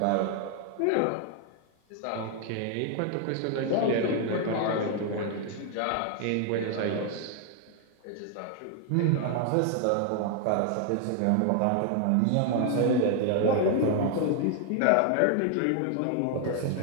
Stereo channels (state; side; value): different; both; correlation 0.00